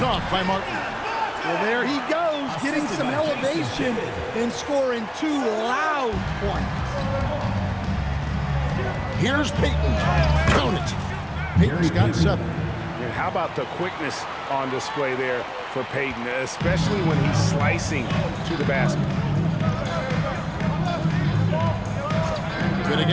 off by Martin. Well, there he goes, getting some elevation and scoring 2 loud points. Here's Payton. Count it. Payton's got 7. And how about the quickness on display there for Payton, especially when he's slicing to the basket. Good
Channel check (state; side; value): identical; both; correlation 1.00